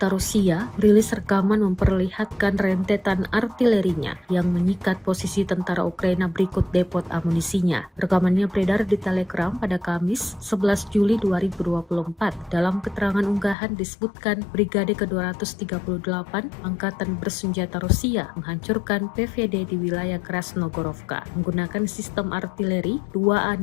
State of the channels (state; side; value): drops out; right; at 13.6 s